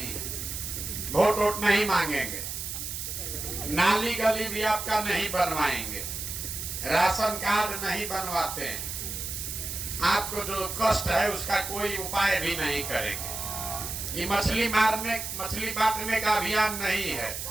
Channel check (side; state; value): right; noise; hiss, 5 dB below the sound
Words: है। वोट वोट नहीं मांगेंगे, नाली गली भी आपका नहीं बनवाएंगे, राशन कार्ड नहीं बनवाते हैं, आपको जो कष्ट है उसका कोई उपाय भी नहीं करेंगे। ये मछली बांटने का अभियान नहीं है,